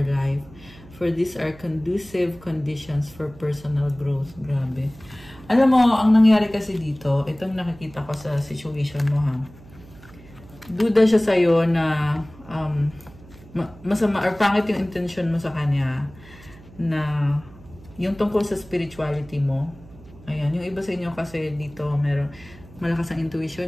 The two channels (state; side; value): noise; right; hum, 21 dB below the sound